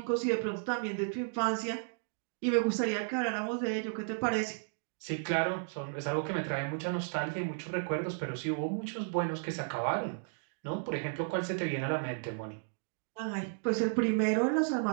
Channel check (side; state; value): left; silent; digital silence